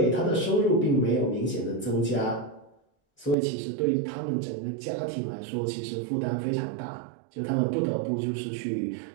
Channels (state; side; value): drops out; left; at 3.4 s